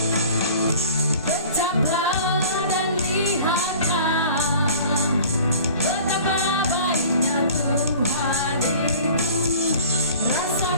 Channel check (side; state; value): both; inverted; correlation -0.45